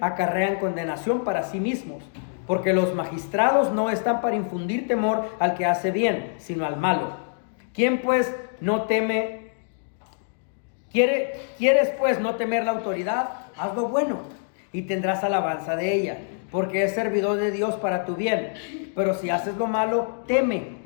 condenación para sí mismos, porque los magistrados no están para infundir temor al que hace bien, sino al malo. ¿Quién pues no teme? ¿Quieres pues no temer la autoridad? Haz lo bueno y tendrás alabanza de ella, porque es servidor de Dios para tu bien. Pero si haces lo malo, teme,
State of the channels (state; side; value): silent; right; digital silence